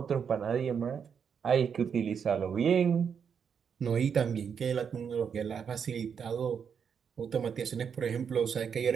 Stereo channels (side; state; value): left; quieter; 7.0 dB